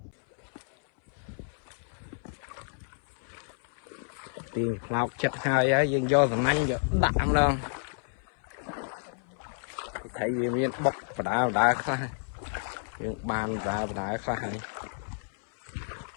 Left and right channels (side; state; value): right; silent; 58 dB below the other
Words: tiền lọc chặt hai á dân do thằng anh giờ đạm đâu thấy gì miếng bọc và đá khai những bàn và đá khai